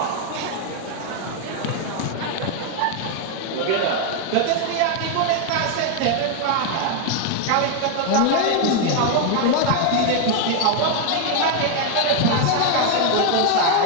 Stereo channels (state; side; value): different; both; correlation 0.01